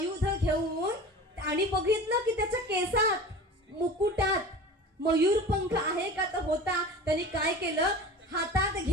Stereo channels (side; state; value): both; normal; correlation 0.36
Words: घेऊन आणि बघितलं की त्याच्या केसात, मुकुटात मयूरपंख आहे का तर होता. त्यांनी काय केलं, हातात